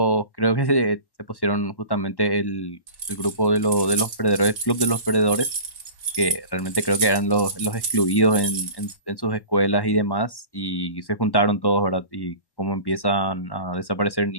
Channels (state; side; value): late; right; 1.1 ms